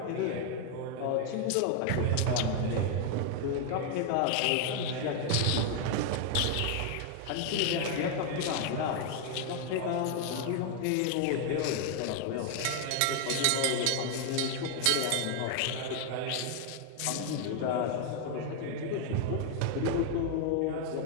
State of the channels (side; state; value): both; different; correlation 0.00